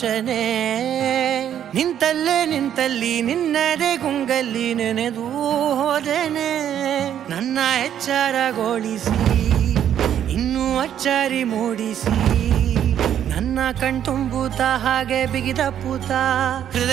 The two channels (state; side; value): quieter; left; 10.0 dB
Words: ನಿಂತಲ್ಲಿ ನಿನ್ನದೇ ಗುಂಗಲ್ಲಿ ನೆನೆದು ಹೋದೆನೆ. ನನ್ನ ಎಚ್ಚರಗೊಳಿಸಿ ಇನ್ನೂ ಅಚ್ಚರಿ ಮೂಡಿಸಿ, ನನ್ನ ಕಣ್ತುಂಬುತ್ತ ಹಾಗೆ ಬಿಗಿದ ಪೂತ